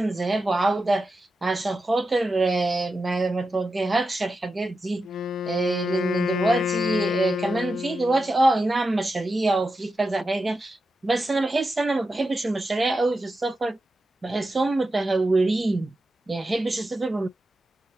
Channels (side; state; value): both; normal; correlation 0.90